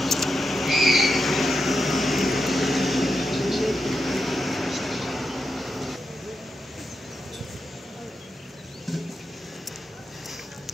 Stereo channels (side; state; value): both; normal; correlation 0.86